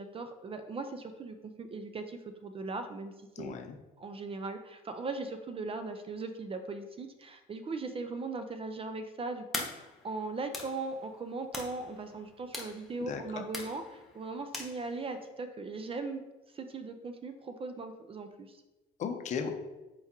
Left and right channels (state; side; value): normal; both; correlation 0.45